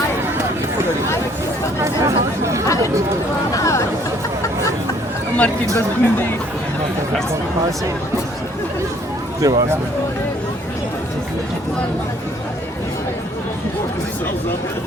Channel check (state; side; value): normal; both; correlation 0.61